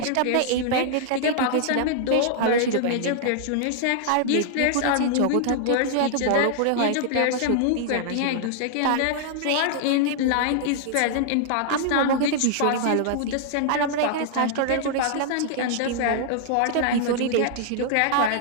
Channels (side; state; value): both; different; correlation -0.01